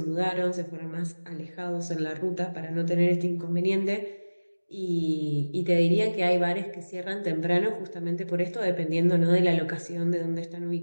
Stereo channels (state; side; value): inverted; both; correlation -1.00